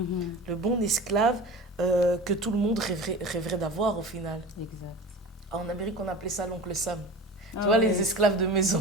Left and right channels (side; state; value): both; normal; correlation 0.33